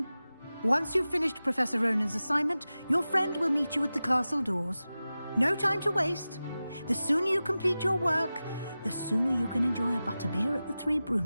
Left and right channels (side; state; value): both; inverted; correlation -0.95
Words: Once you've finished Professor Ronan's assignment, your friend will meet you at the castle doors. No time to waste. The sooner you complete your work, the sooner you can enjoy a butterbeer at the Three